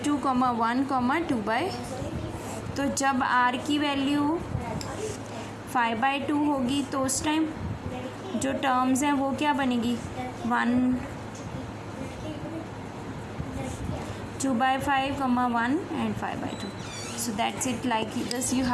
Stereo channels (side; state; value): both; identical; correlation 1.00